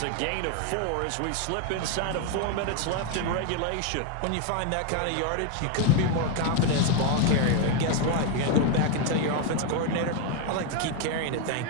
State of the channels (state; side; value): different; both; correlation 0.01